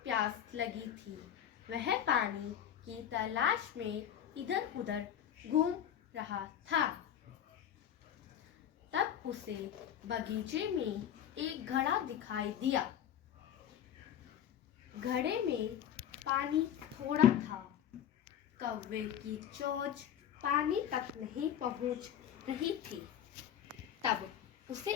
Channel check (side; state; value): right; quieter; 9.9 dB